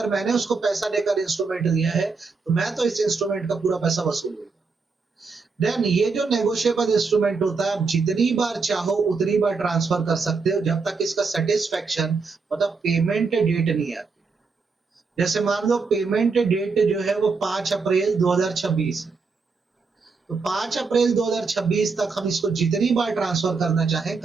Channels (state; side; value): quieter; left; 4.6 dB